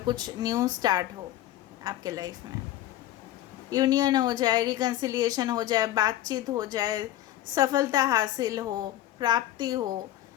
कुछ न्यू स्टार्ट हो आपके लाइफ में, यूनियन हो जाए, रिकन्सिलिएशन हो जाए, बातचीत हो जाए, सफलता हासिल हो, प्राप्ति हो,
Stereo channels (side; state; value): right; quieter; 13.6 dB